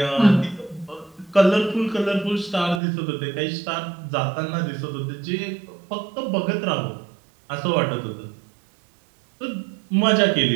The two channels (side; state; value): left; drops out; at 2.8 s